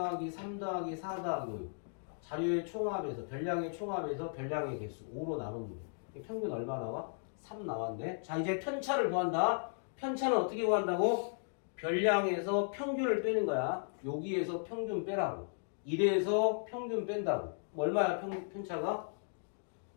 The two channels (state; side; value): silent; right; digital silence